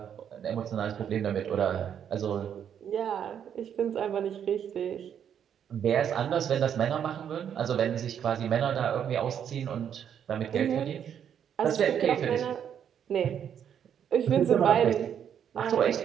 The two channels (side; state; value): left; quieter; 8.7 dB